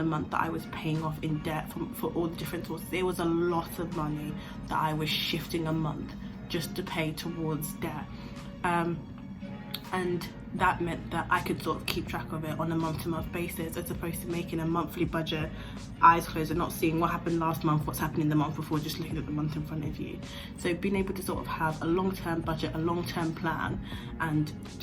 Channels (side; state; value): both; identical; correlation 1.00